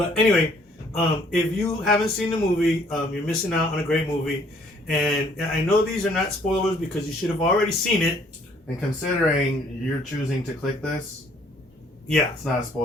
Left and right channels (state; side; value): normal; both; correlation 0.62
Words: anyway, if you haven't seen the movie, you're missing out on a great movie. And I know these are not spoilers because you should have already seen it. And considering you're choosing to click this, yeah, it's not a